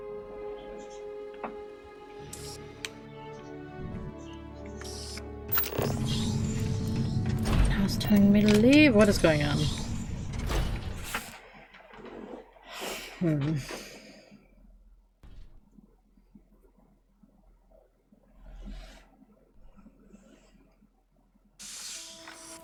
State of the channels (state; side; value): identical; both; correlation 1.00